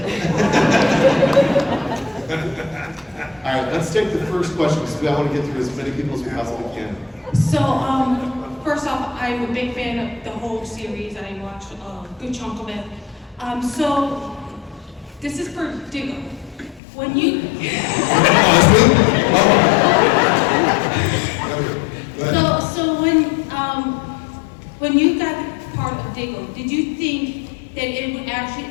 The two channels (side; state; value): right; drops out; at 16.8 s